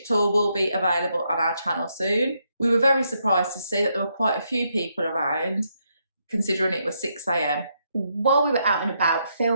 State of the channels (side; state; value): both; inverted; correlation -0.78